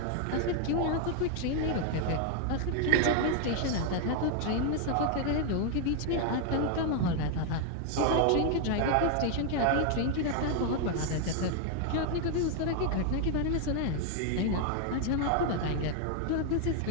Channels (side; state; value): both; different; correlation 0.00